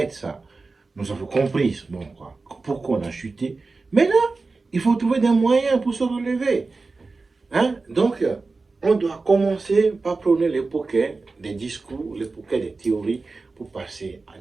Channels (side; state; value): left; quieter; 3.8 dB